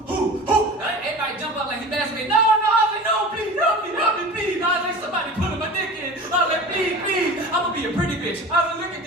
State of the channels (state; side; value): normal; both; correlation 0.36